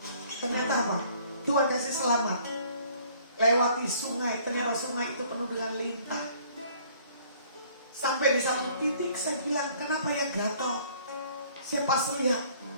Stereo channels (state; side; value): inverted; both; correlation -0.57